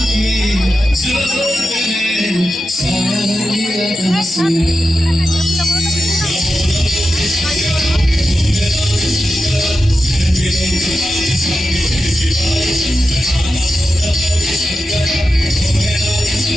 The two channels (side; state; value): both; normal; correlation 0.90